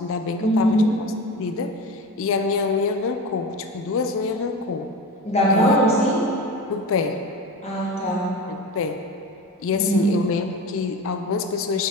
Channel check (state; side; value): normal; both; correlation 0.30